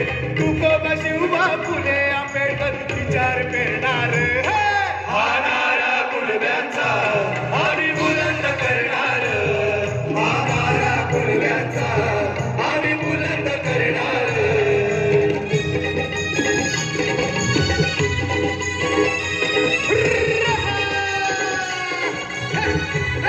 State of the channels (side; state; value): both; identical; correlation 1.00